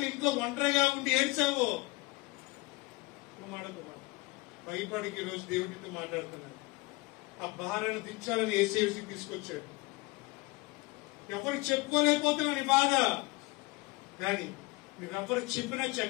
ఇంట్లో ఒంటరిగా ఉండి ఏడ్చావో. కుమార కుమార్ భయపడికి ఈరోజు దేవుడితో మాట్లాడుతున్నాడు. ఆ భారాన్ని దించాలని ఏసీకి తీసుకొచ్చాడు. ఎవరికి చెప్పుకోలేకపోతున్నావు నీ బాధ. కానీ నువ్వెవరికి చెప్పినా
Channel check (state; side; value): quieter; right; 23.0 dB